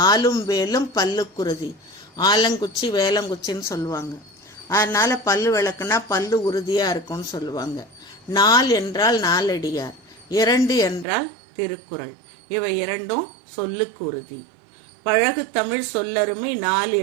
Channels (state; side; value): drops out; left; at 11.1 s